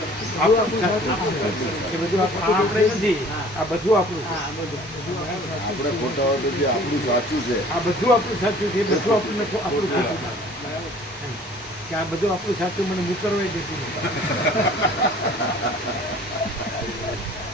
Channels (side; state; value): both; normal; correlation 0.50